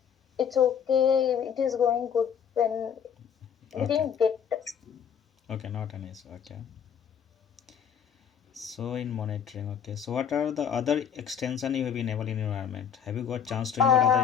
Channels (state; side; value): quieter; right; 7.8 dB